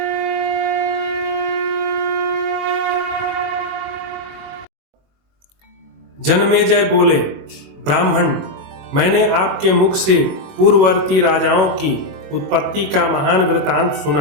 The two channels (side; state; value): left; late; 21 ms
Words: जनमेजय बोले, ब्राह्मण, मैंने आपके मुख से पूर्ववर्ती राजाओं की उत्पत्ति का महान वृतांत